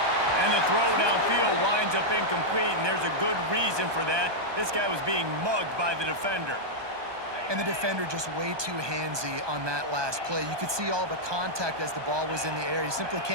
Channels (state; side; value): late; left; 1.2 ms